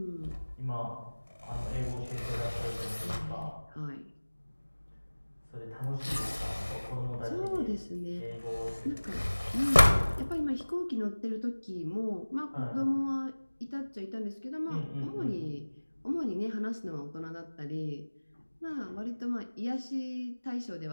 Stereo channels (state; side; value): inverted; both; correlation -1.00